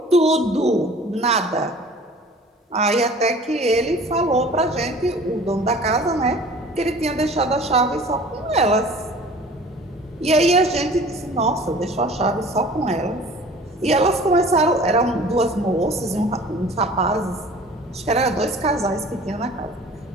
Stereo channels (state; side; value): normal; both; correlation 0.46